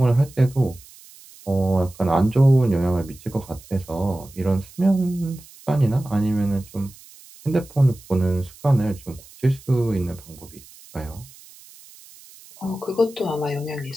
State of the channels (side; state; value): right; noise; hiss, 22 dB below the sound